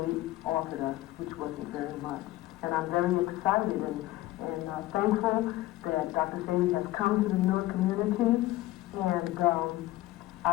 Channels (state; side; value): quieter; right; 16.5 dB